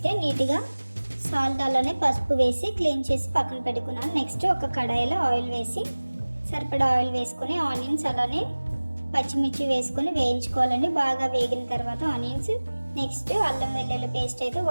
నీట్గా సాల్ట్ అలానే పసుపు వేసి క్లీన్ చేసి పక్కన పెట్టుకున్నాను. నెక్స్ట్ ఒక కడాయిలో ఆయిల్ వేసి సరిపడా ఆయిల్ వేసుకొని ఆనియన్స్ అలానే పచ్చిమిర్చి వేసుకొని వేయించుకోవాలండి. బాగా వేగిన తర్వాత ఆనియన్స్, నెక్స్ట్ అల్లం వెల్లుల్లి పేస్ట్ అయితే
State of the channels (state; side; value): inverted; both; correlation -1.00